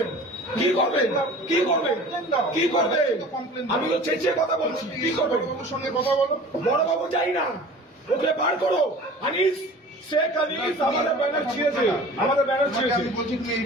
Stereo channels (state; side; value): normal; both; correlation 0.42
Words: কি করবেন? কি করবেন? কি করবেন? আমি তো চেঁচিয়ে কথা বলছি। কি করবেন? সঙ্গে কথা বলো। বড়বাবু যাই না, ওকে বার করো। আনিস, শেখ আনিস আমাদের ব্যানার ছিঁড়েছে, আমাদের ব্যানার ছিঁড়েছে। আমি বলছি তুমি